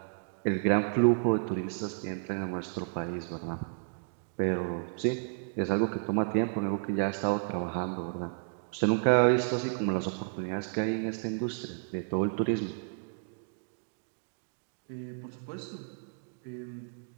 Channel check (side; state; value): left; silent; digital silence